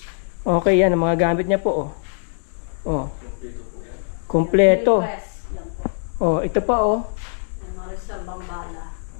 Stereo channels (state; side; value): silent; right; digital silence